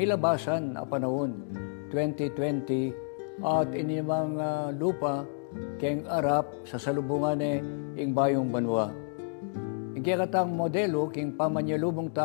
na panahon, 2020, at inimang lupa, keng arap, sa salubungan yung bayong banwa. Yung kikatang modelo, king pamanyalubong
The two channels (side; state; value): right; silent; 58 dB below the other